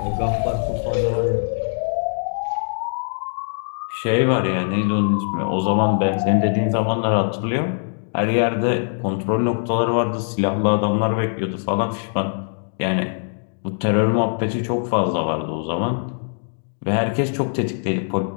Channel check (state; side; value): silent; right; digital silence